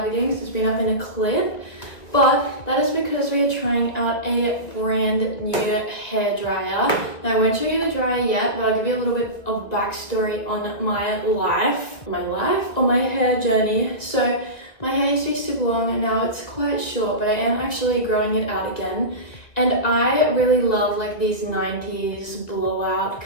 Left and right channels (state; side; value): late; right; 2.1 ms